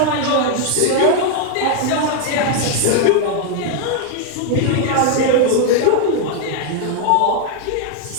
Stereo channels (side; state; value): both; different; correlation 0.00